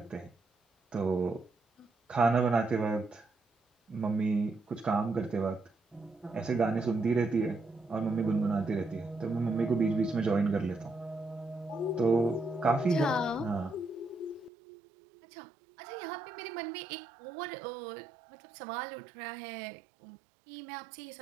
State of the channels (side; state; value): left; drops out; at 14.5 s